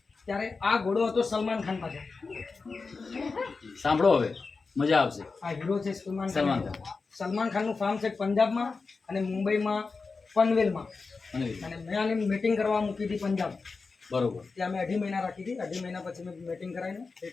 ત્યારે આ ઘોડો હતો સલમાન ખાન પાસે. સાંભળો, હવે મજા આવશે. આ હીરો છે સલમાન સલમાન ખાન. ખાન. સલમાન ખાનનું ફાર્મ છે પંજાબમાં અને મુંબઈમાં પનવેલમાં. અને મેં આની મીટિંગ કરવા મૂકી હતી પંજાબ. બરોબર. ત્યાં મેં 2.5 મહિના રાખી હતી. 2.5 મહિના પછી મેં મીટિંગ કરાવીને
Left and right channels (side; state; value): right; quieter; 4.4 dB